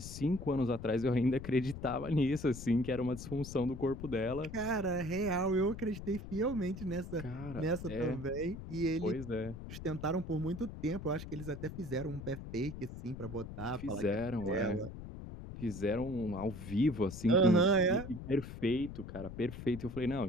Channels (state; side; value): noise; left; rumble, 10 dB below the sound